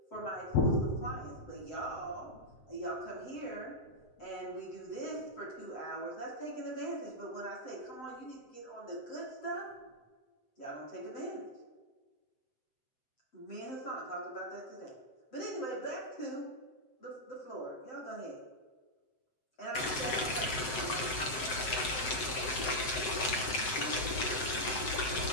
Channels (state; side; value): late; right; 7.7 ms